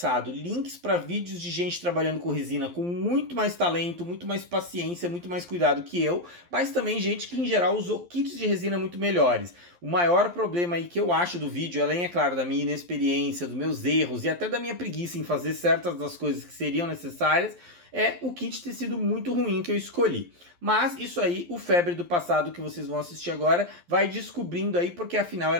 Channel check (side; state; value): left; late; 11 ms